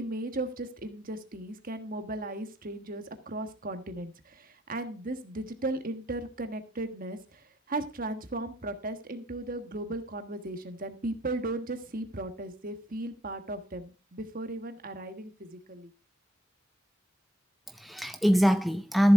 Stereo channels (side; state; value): both; normal; correlation 0.76